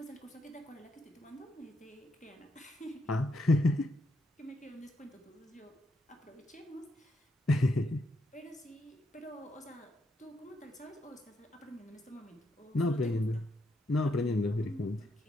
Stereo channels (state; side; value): normal; both; correlation 0.78